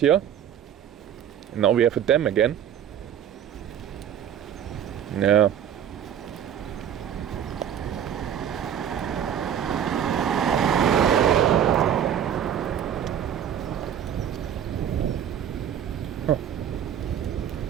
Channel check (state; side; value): quieter; left; 9.4 dB